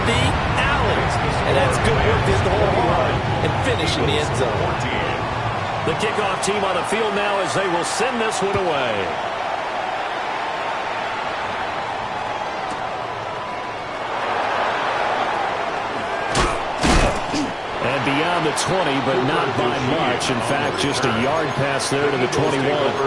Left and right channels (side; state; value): both; identical; correlation 1.00